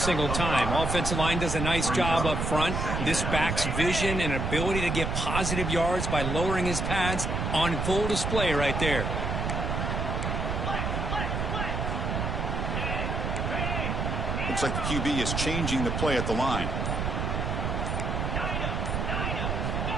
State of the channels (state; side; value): noise; right; rumble, 1 dB below the sound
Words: time. Offensive line does a nice job up front. This back's vision and ability to get positive yards by lowering his pads on full display right there. Looks like the QB is changing the play at the line.